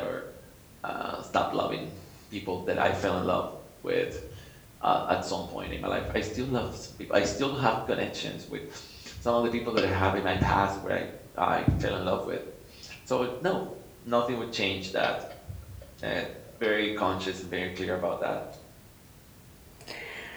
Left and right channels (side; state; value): both; identical; correlation 1.00